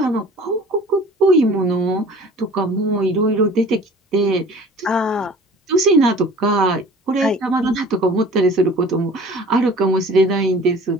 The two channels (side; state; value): both; normal; correlation 0.46